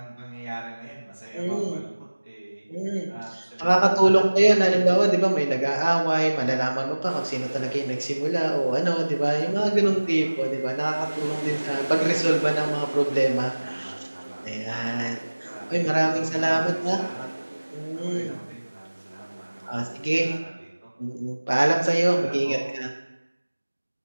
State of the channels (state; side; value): inverted; both; correlation -1.00